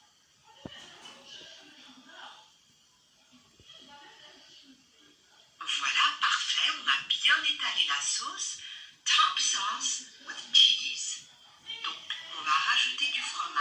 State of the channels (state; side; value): identical; both; correlation 1.00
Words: Voilà, parfait, on a bien étalé la sauce. Top sauce with cheese. Donc, on va rajouter du